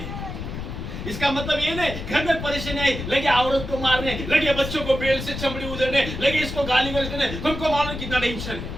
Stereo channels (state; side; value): noise; left; rumble, 7 dB below the sound